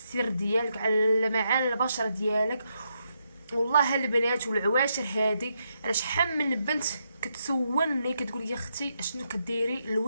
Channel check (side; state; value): both; inverted; correlation -0.81